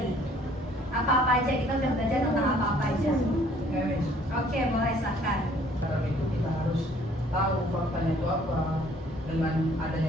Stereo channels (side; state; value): both; normal; correlation 0.59